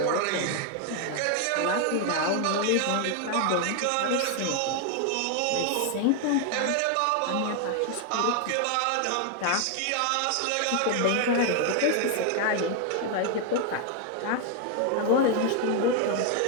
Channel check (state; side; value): different; both; correlation 0.00